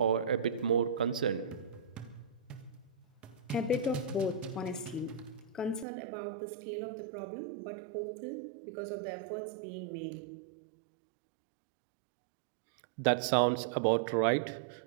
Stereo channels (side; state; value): left; drops out; at 5.9 s